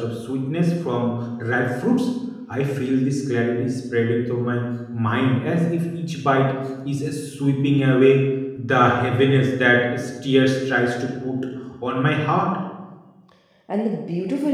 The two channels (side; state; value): both; identical; correlation 1.00